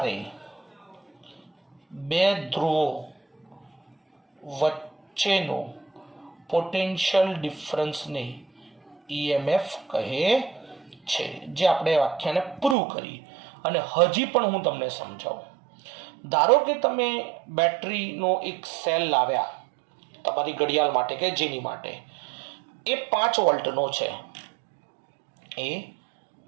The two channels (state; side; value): drops out; left; at 12.8 s